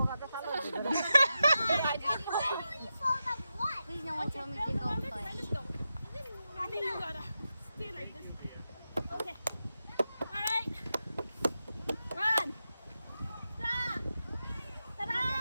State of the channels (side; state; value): both; inverted; correlation -0.90